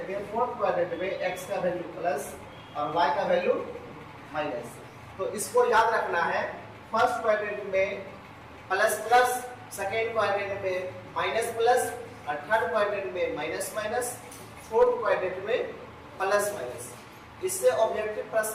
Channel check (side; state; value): both; identical; correlation 1.00